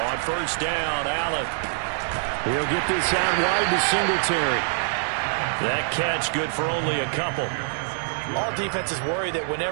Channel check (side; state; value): left; silent; digital silence